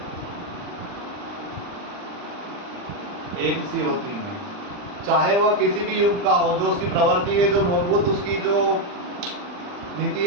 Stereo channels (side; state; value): left; late; 40 ms